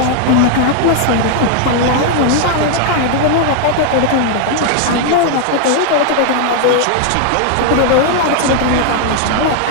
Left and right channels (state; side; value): different; both; correlation 0.00